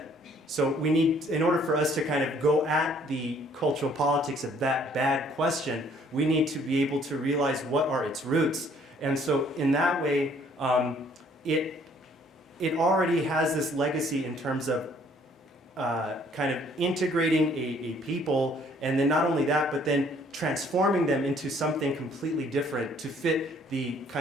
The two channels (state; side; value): normal; both; correlation 0.61